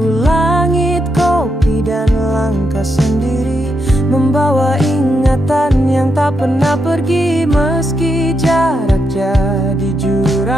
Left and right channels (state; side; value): normal; both; correlation 0.82